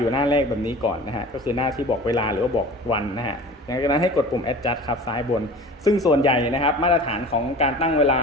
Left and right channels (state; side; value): normal; both; correlation 0.40